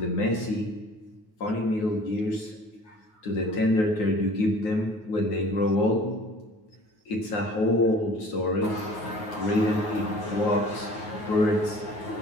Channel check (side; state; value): right; late; 9.5 ms